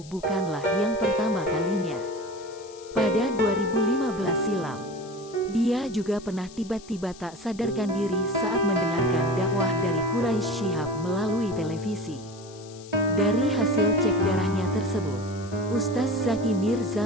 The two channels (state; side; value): noise; left; hiss, 21 dB below the sound